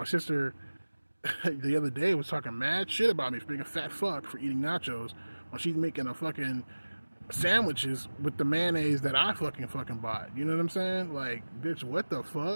sister the other day was talking mad shit about me for being a fat fuck for eating nachos when she's making a fucking sandwiches with the mayonnaise that I fucking bought. You know what I'm saying? Like, bitch, what the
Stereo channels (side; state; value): both; inverted; correlation -1.00